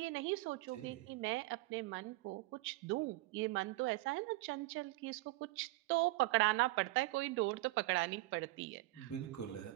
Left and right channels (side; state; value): left; quieter; 19.9 dB